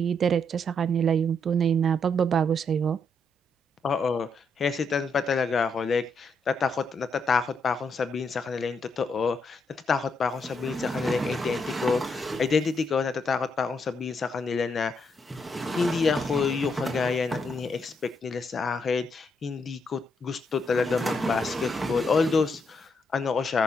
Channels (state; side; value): normal; both; correlation 0.77